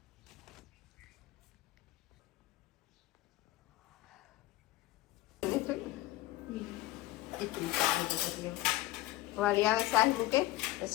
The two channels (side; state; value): right; quieter; 17.8 dB